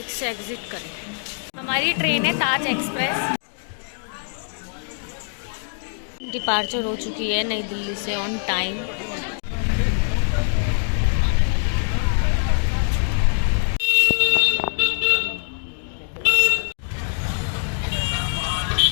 से एग्जिट करें। हमारी ट्रेन है ताज एक्सप्रेस। डिपार्चर हो चुकी है नई दिल्ली से ऑन टाइम।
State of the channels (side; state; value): right; silent; 63 dB below the other